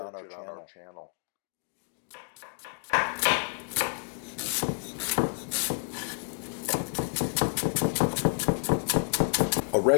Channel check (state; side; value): silent; right; digital silence